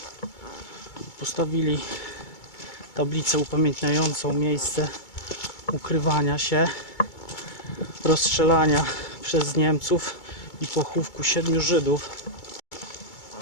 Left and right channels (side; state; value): right; late; 2.3 ms